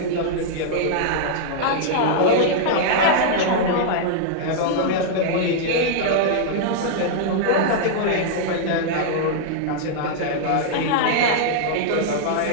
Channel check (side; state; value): both; different; correlation -0.01